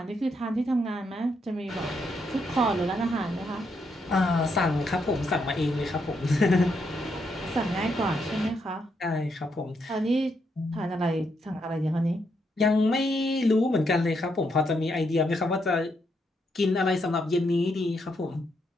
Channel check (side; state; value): both; normal; correlation 0.78